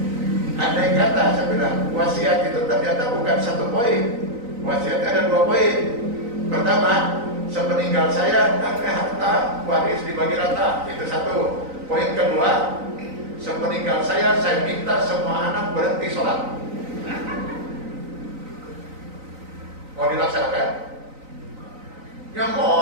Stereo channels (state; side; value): late; left; 3.9 ms